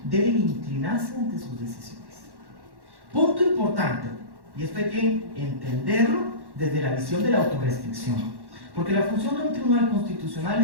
deben inclinarse ante sus decisiones. Punto importante, y esto hay que entenderlo desde la visión de la autorrestricción. Porque la función de un tribunal constitucional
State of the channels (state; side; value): late; left; 1.1 ms